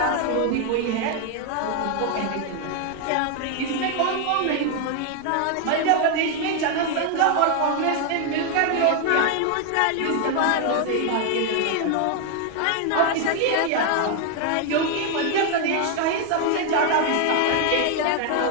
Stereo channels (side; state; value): both; different; correlation 0.00